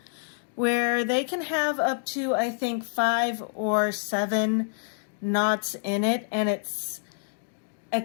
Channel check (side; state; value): right; silent; digital silence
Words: where they can have up to, I think, 5 or 7 knots in it, and it's